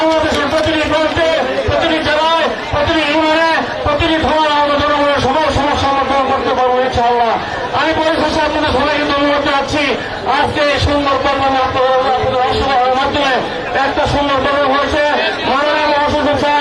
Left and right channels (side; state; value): both; identical; correlation 1.00